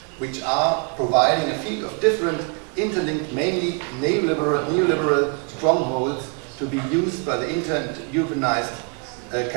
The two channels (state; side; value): quieter; left; 34.7 dB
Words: which are providing a field of different interlinked, mainly neoliberal strongholds to be used by the inter-Europeanized